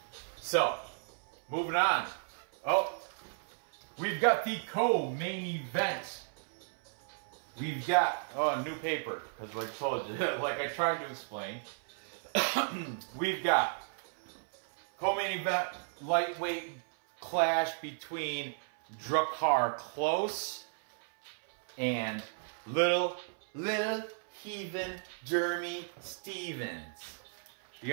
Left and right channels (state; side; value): silent; left; 55 dB below the other